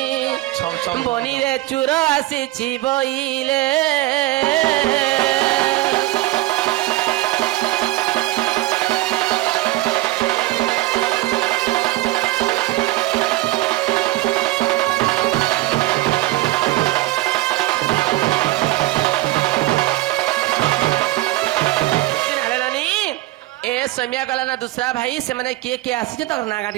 बनी रे चूर आसी बइले ए समिया गला ना दूसरा भाई से मैंने किए आसी तो ना गाड़ी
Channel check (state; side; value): quieter; left; 18.2 dB